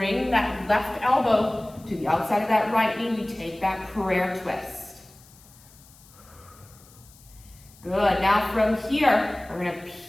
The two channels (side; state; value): left; noise; hiss, 25 dB below the sound